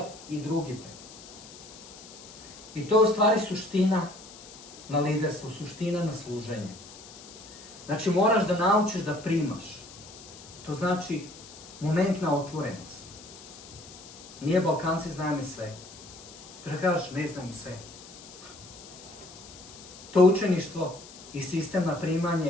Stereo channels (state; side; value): noise; left; hiss, 17 dB below the sound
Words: i drugite. I to je u stvari suština na liderstvu, suština na služenje. Znači, moraš da naučiš da primaš. To znači momentna otvorenost. Nije Balkanci znaju sve. Da kažeš, ne znam sve. To učeništvo i sistem na